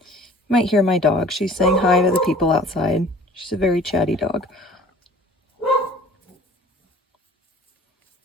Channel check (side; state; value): both; normal; correlation 0.48